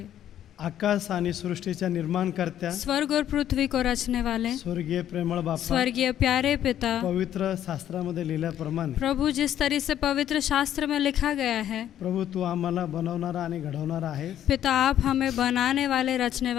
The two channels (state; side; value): quieter; right; 11.0 dB